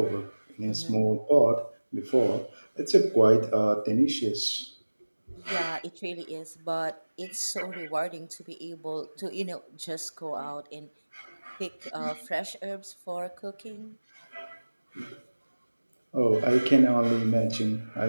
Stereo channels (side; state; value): both; inverted; correlation -1.00